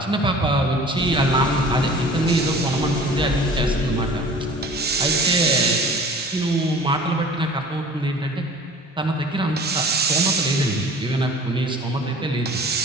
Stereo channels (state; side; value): normal; both; correlation 0.44